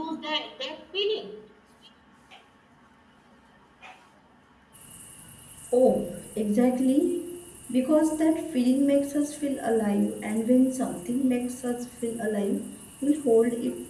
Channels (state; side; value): identical; both; correlation 1.00